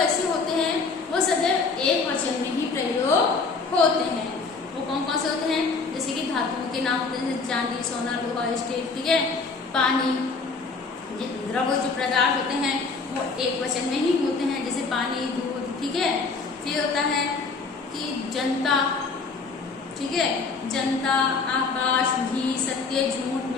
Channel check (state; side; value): quieter; right; 4.4 dB